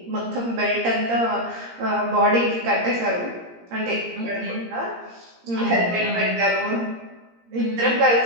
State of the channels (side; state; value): left; late; 17 ms